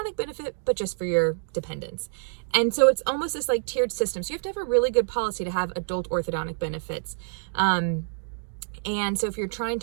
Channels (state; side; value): silent; left; digital silence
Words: benefit, but just for your dependents. And so it's almost this like tiered system. So you have to have a really good policy to have adult orthodontic benefits. And so if you're trying